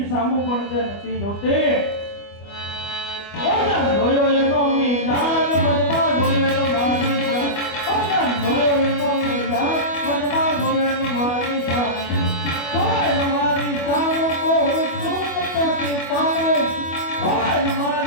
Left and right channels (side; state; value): right; late; 25 ms